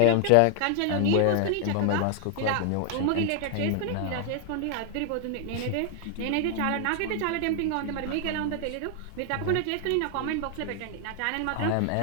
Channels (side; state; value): both; different; correlation 0.00